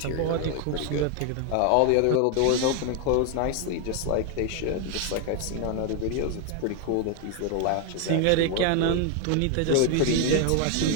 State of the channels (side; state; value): both; different; correlation 0.01